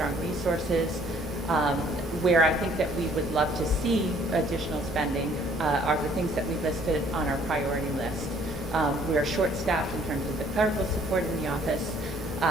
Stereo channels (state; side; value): normal; both; correlation 0.60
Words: resources. Where I think that we would love to see additional spending are the things that we listed on our priority list. We are short-staffed in terms of the clerical support in the office.